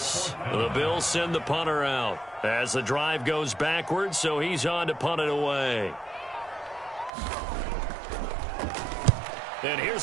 The Bills send the punter out as the drive goes backwards, so he's on to punt it away. And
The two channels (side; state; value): left; drops out; at 7.1 s